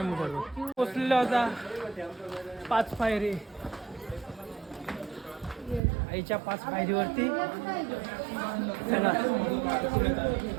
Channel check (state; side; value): drops out; left; at 5.8 s